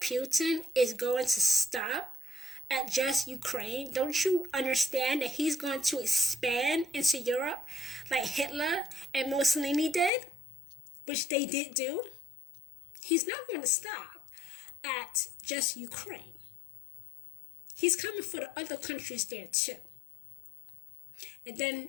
Putin is going to stop at just Ukraine? Don't you understand that he's going to expand into Europe like Hitler and Mussolini did, which they did do? He's not going to stop at just Ukraine. He's coming for the other countries there too. And then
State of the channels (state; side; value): drops out; right; at 10.1 s